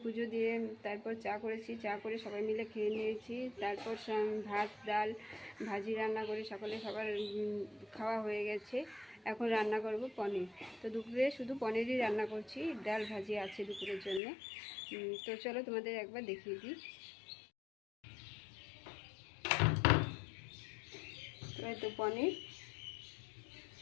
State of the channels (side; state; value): right; drops out; at 14.2 s